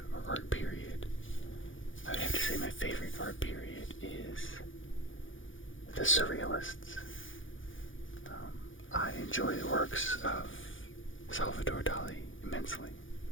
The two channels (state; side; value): late; right; 0.57 ms